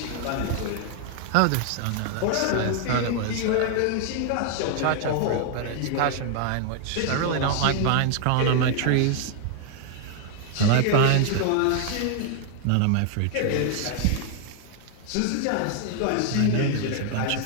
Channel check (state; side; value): different; both; correlation 0.00